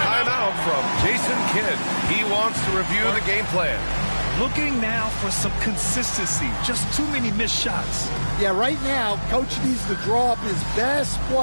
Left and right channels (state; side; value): inverted; both; correlation -1.00